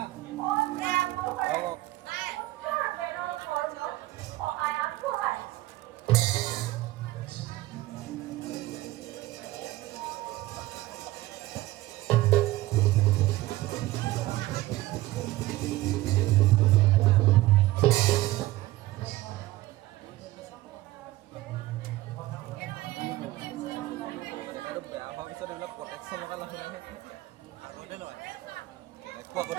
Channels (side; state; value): left; quieter; 17.5 dB